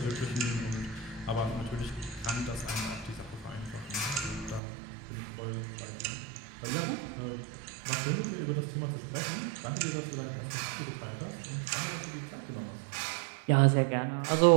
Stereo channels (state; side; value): drops out; left; at 4.6 s